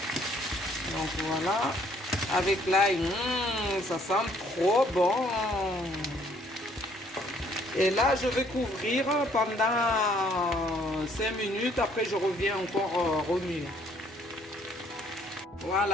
Donc, voilà. Avec l'ail, ça sent trop bon. Et là, je vais couvrir pendant 5 minutes. Après, je reviens encore remuer.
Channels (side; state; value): both; normal; correlation 0.64